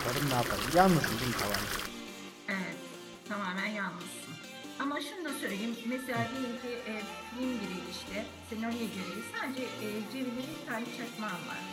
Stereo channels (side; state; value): both; identical; correlation 1.00